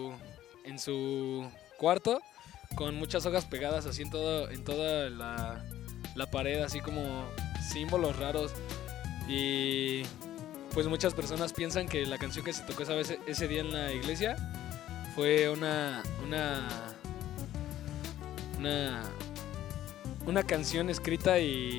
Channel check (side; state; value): right; quieter; 12.9 dB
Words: cuarto, con muchas hojas pegadas así en toda la pared, así como símbolos raros. Y pues muchas personas piensan que la canción que se tocó ese día en la iglesia fue una canción escrita